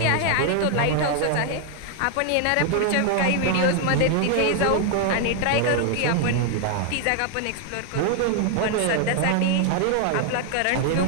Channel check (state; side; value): different; both; correlation 0.00